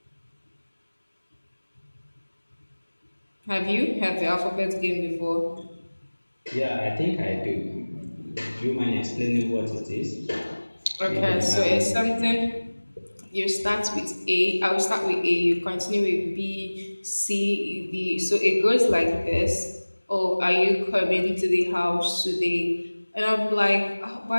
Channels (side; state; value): both; inverted; correlation -1.00